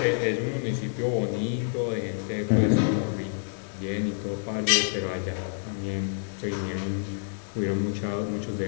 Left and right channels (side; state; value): right; silent; 59 dB below the other